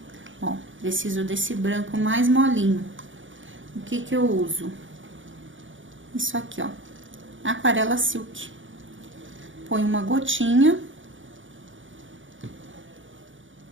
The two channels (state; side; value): late; left; 0.56 ms